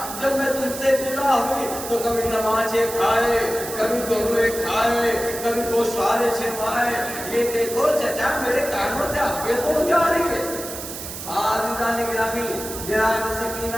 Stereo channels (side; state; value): right; noise; hiss, 9 dB below the sound